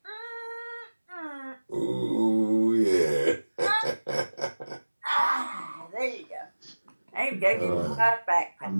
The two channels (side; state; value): both; inverted; correlation -1.00